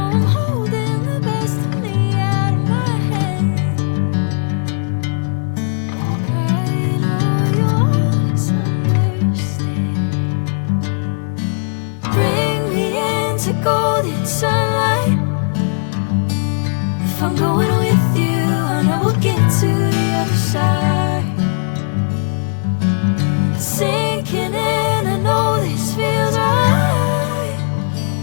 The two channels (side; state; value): right; silent; digital silence